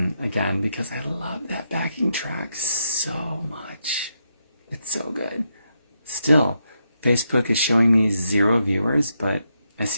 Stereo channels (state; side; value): inverted; both; correlation -0.81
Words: again because I love that backing track so much. It's so good. Still, Facebook is showing me 0 viewers, but I